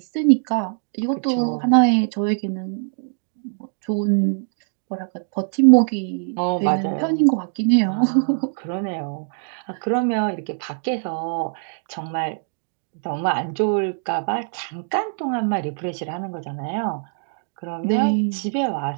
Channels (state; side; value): silent; left; 64 dB below the other